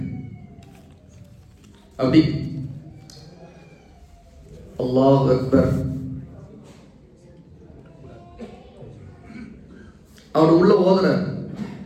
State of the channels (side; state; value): both; identical; correlation 1.00